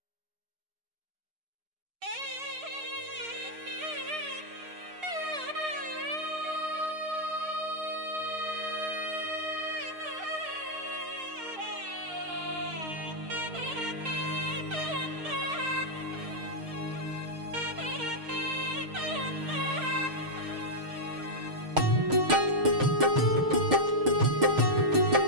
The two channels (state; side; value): late; left; 6.5 ms